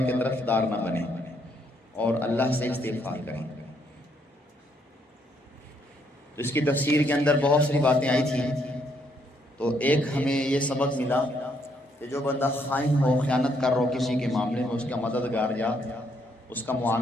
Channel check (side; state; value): both; normal; correlation 0.71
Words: کی طرف دار نہ بنیں اور اللہ سے استغفار کریں۔ اس کی تفسیر کے اندر بہت ساری باتیں آئی تھیں، تو ایک ہمیں یہ سبق ملا کہ جو بندہ خائن ہو، خیانت کر رہا ہو کسی کے معاملے میں، اس کا مددگار یا اس کا